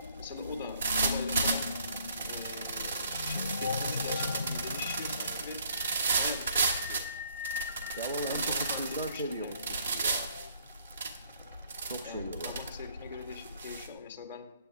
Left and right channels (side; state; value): both; inverted; correlation -0.64